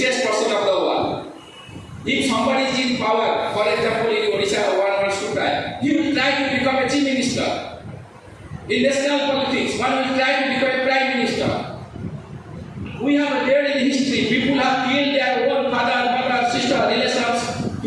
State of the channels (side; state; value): both; identical; correlation 1.00